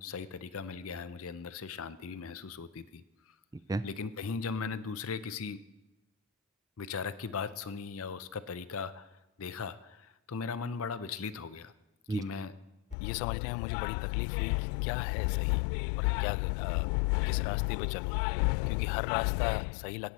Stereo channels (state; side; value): drops out; right; at 13.0 s